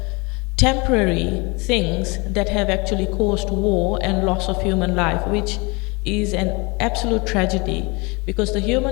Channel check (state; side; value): quieter; right; 27.7 dB